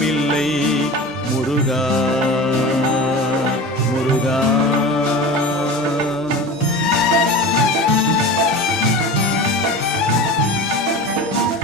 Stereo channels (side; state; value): both; normal; correlation 0.32